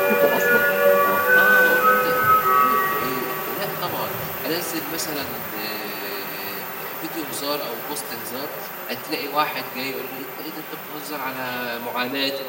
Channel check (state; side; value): identical; both; correlation 1.00